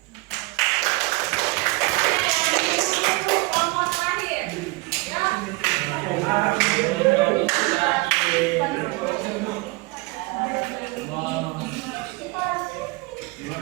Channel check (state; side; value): quieter; left; 24.1 dB